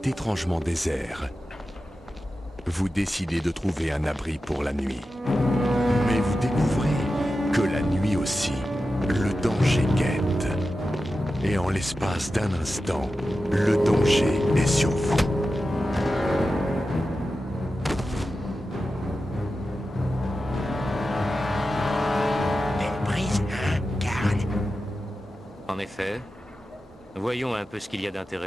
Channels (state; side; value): normal; both; correlation 0.92